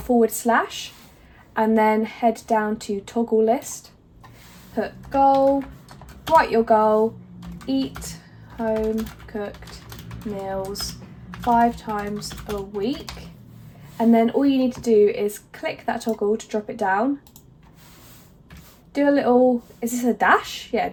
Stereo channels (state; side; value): identical; both; correlation 1.00